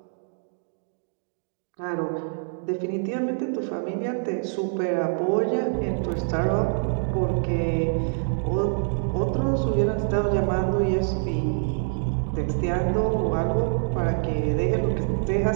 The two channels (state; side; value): silent; left; digital silence